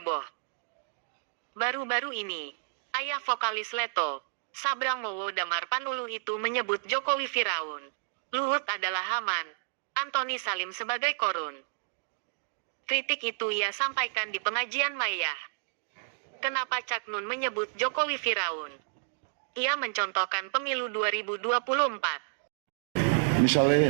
Baru-baru ini, ayah vokalis Leto, Sabrang Mowo Damar Panuluh itu menyebut Jokowi Firaun, Luhut adalah Haman, Antoni Salim sebagai korun. Kritik itu ia sampaikan di pengajian Mayah. Kenapa Cak Nun menyebut Jokowi Firaun? Ia mencontohkan pemilu 2024.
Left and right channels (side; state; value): left; silent; digital silence